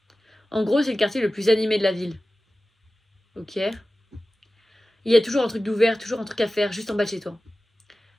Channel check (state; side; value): normal; both; correlation 0.95